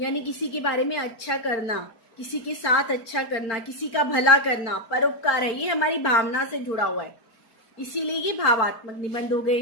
किसी के बारे में अच्छा करना, किसी के साथ अच्छा करना, किसी का भला करना, परोपकार है। ये हमारी भावना से जुड़ा हुआ है। इसीलिए ये भावात्मक निबंध हो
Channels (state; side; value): late; right; 4.4 ms